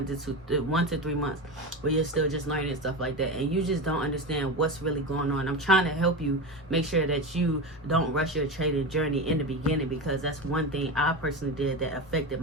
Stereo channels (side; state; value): both; normal; correlation 0.21